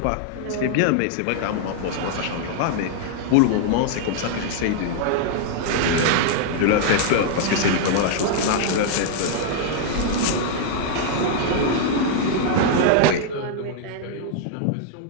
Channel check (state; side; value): different; both; correlation 0.00